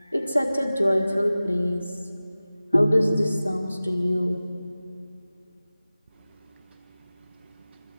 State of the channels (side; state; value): both; inverted; correlation -0.97